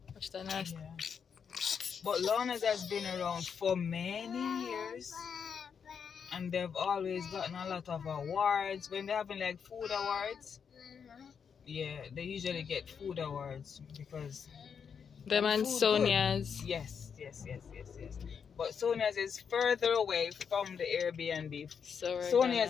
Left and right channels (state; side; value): quieter; right; 6.8 dB